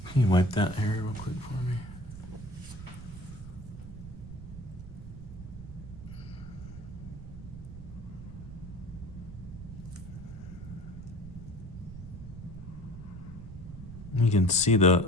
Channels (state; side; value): noise; right; rumble, 12 dB below the sound